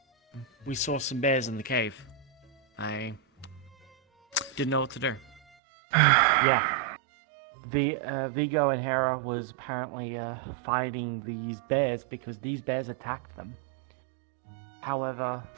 We saw some bears in the cave. I didn't know what to do. Yeah. Vigo and Hera was apparently fighting these bears because these bears attacked them. However,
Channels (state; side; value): drops out; left; at 5.4 s